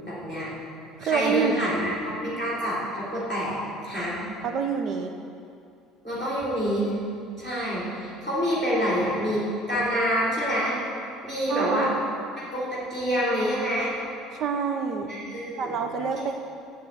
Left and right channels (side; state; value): both; normal; correlation 0.50